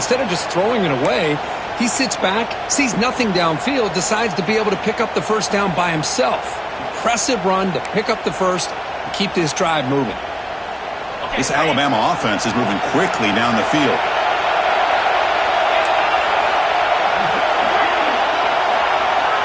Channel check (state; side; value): identical; both; correlation 1.00